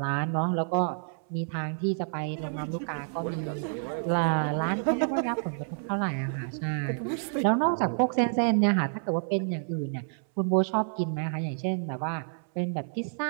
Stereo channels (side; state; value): left; silent; 59 dB below the other